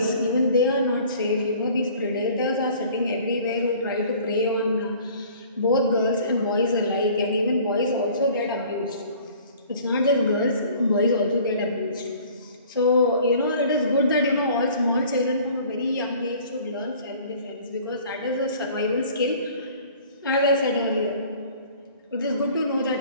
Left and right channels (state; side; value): inverted; both; correlation -0.50